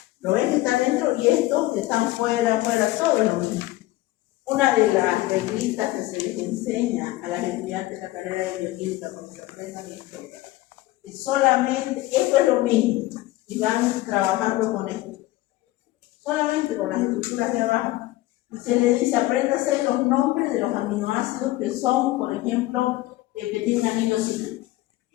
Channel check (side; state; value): right; quieter; 17.7 dB